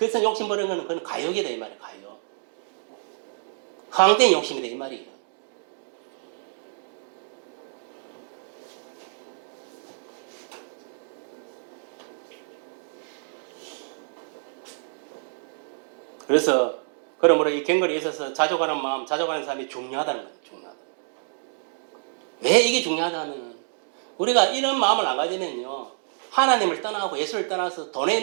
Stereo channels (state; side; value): silent; left; digital silence